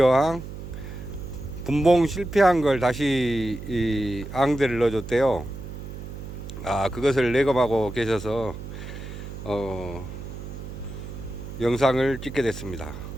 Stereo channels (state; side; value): noise; right; hum, 10 dB below the sound